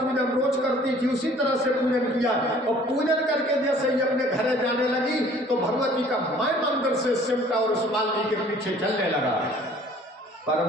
रोज करती थी उसी तरह से पूजन किया, और पूजन करके जैसे ही अपने घर जाने लगी तो भगवती का माय मंदिर से सिमटा और उस माली के पीछे चलने लगा। पर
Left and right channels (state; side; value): normal; both; correlation 0.53